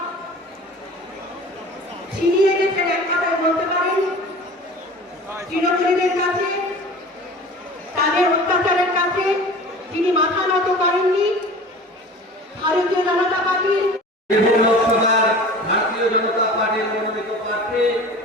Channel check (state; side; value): normal; both; correlation 0.40